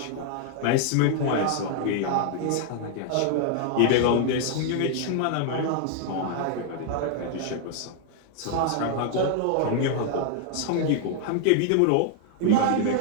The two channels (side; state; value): both; different; correlation 0.00